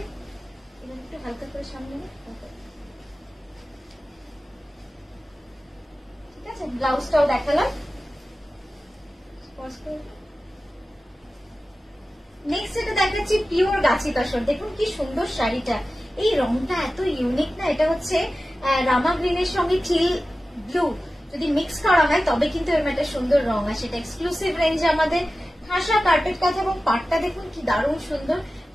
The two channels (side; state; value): both; normal; correlation 0.95